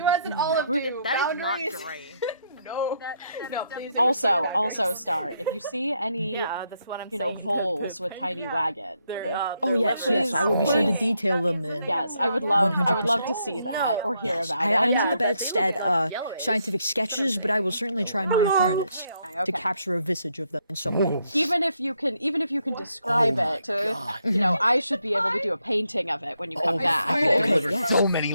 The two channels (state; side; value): inverted; both; correlation -0.76